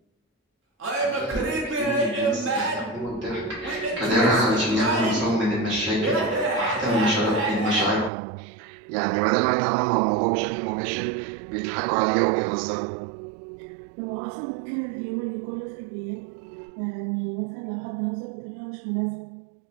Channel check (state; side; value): drops out; left; at 8.1 s